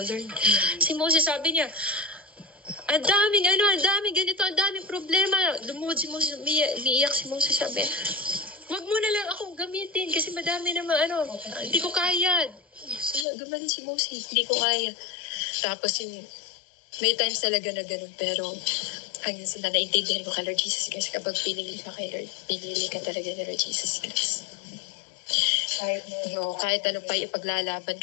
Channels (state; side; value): drops out; right; at 13.2 s